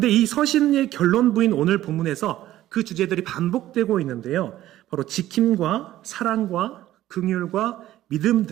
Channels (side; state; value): left; quieter; 14.0 dB